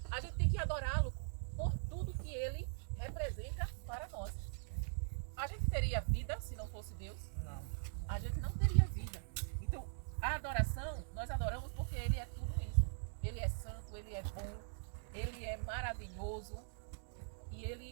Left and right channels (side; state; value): left; silent; digital silence